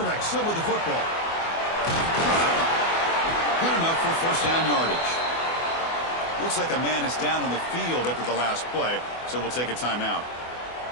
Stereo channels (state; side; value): late; right; 24 ms